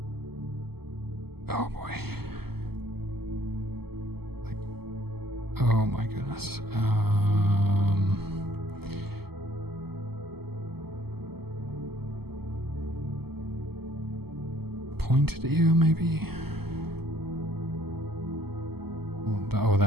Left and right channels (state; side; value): late; left; 0.96 ms